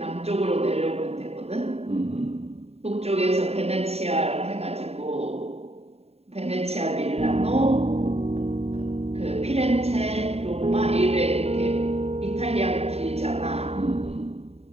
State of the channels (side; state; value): left; late; 0.30 ms